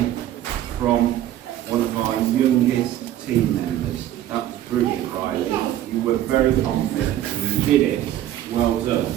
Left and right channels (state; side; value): quieter; left; 12.6 dB